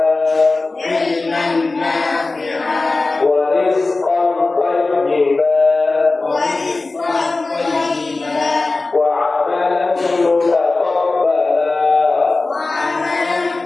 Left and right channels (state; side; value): quieter; right; 3.4 dB